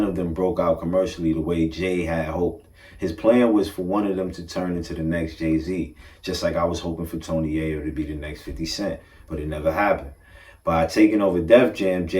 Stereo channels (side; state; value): both; identical; correlation 1.00